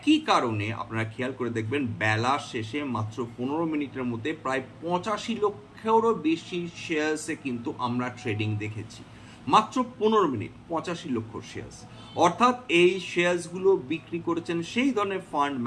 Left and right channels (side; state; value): both; identical; correlation 1.00